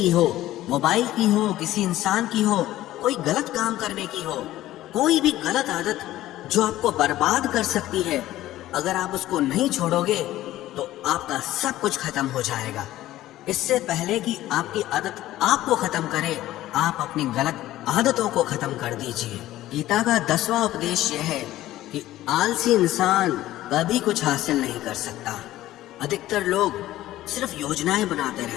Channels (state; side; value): quieter; right; 14.9 dB